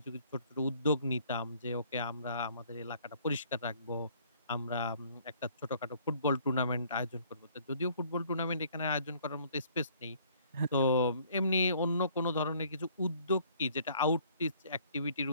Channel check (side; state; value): both; inverted; correlation -0.60